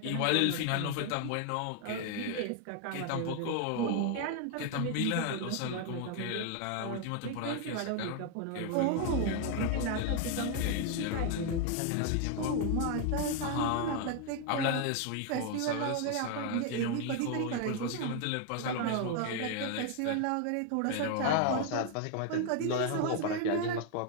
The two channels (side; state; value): both; different; correlation 0.01